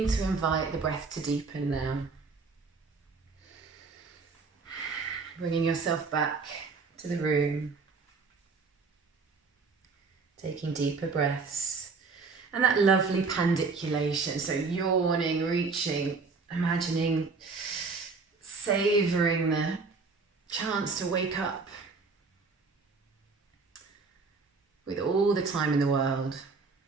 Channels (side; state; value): left; quieter; 4.4 dB